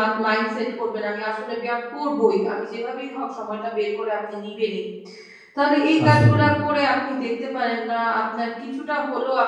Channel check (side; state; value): both; identical; correlation 1.00